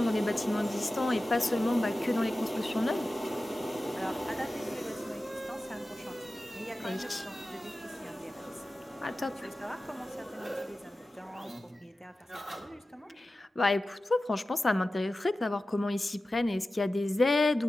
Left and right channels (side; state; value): both; normal; correlation 0.95